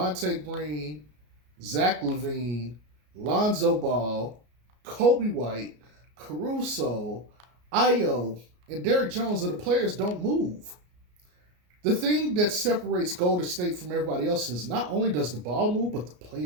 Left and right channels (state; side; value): late; left; 33 ms